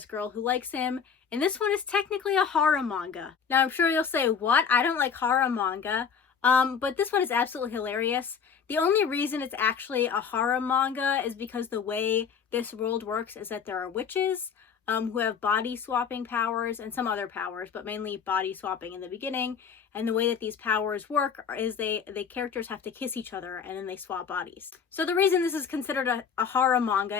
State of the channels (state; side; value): quieter; right; 6.7 dB